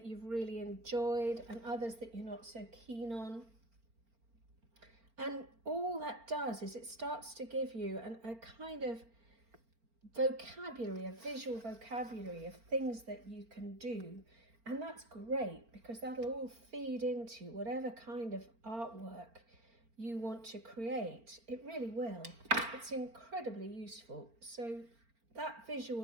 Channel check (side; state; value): left; late; 4.4 ms